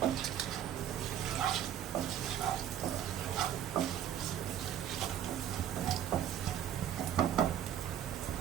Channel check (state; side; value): quieter; left; 10.3 dB